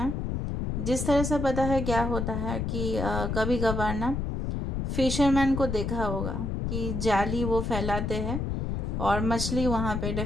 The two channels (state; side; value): noise; left; rumble, 2 dB below the sound